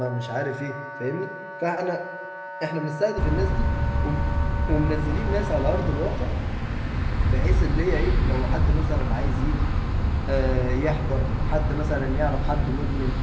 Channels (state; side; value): identical; both; correlation 1.00